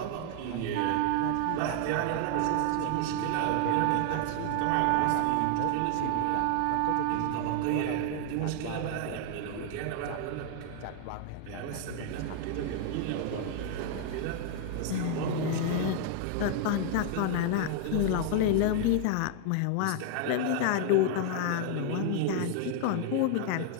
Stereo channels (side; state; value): both; different; correlation 0.00